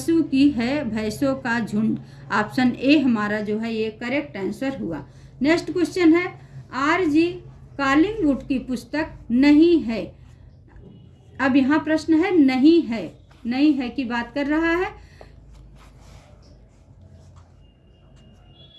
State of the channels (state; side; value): identical; both; correlation 1.00